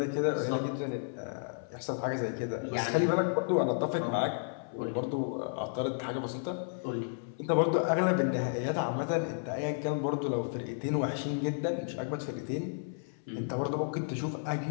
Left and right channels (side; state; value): right; silent; 56 dB below the other